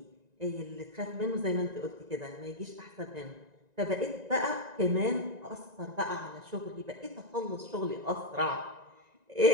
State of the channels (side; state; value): left; late; 1.9 ms